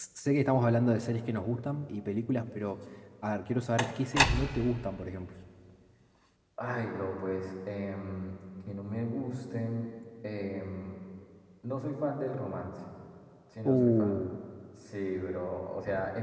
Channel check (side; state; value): both; identical; correlation 1.00